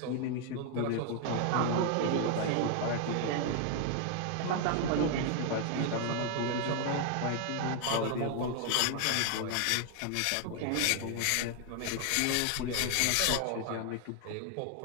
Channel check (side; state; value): both; different; correlation 0.00